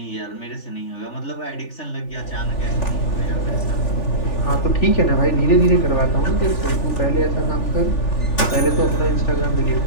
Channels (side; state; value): right; late; 3.4 ms